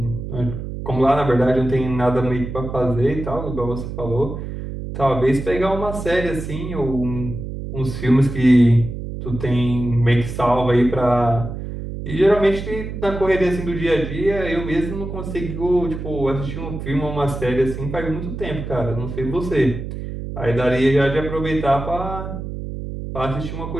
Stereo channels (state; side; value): noise; right; hum, 7 dB below the sound